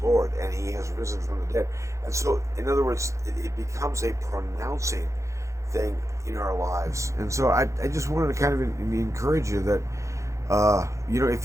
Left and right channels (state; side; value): late; left; 0.15 ms